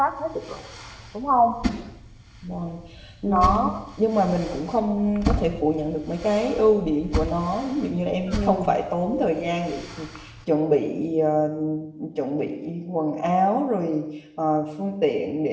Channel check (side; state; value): both; identical; correlation 1.00